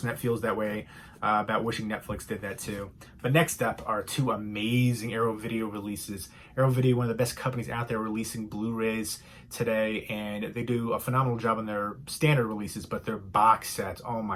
that feels that way about wishing Netflix did that too. But next up are 2 amazing Arrow Video releases. Arrow Video, one of the best companies out there, releasing Blu-rays today, and they do a phenomenal job on their standard releases, but their box sets, oh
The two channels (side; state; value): both; identical; correlation 1.00